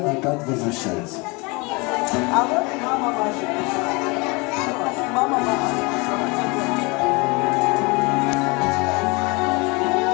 опять возвращается. А вот мама ваша. Мама ваша.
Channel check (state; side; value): quieter; right; 27.4 dB